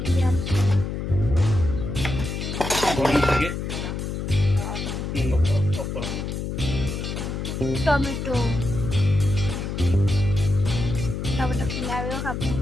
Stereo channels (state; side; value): noise; left; hum, 4 dB below the sound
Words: কি গরম থেকে টমেটো টমেটো ফ্লেভারও খাবো